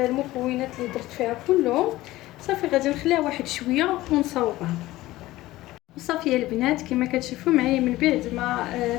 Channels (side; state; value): right; quieter; 17.2 dB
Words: اللي درت فيها كلهم. صافي غادي نخليها واحد شويه ونصاوبها. صافي يا البنات كما كتشوفوا معايا من بعد ما